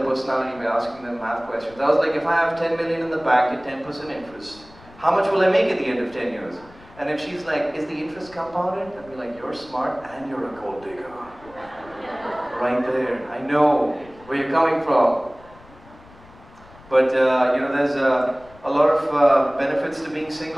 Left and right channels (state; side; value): noise; left; rumble, 23 dB below the sound